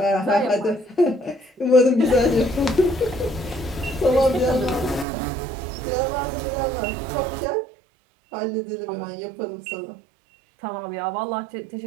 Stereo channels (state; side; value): drops out; left; at 5.1 s